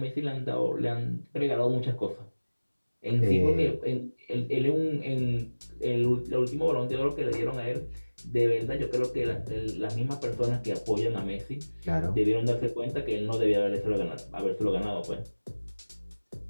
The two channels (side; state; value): both; inverted; correlation -1.00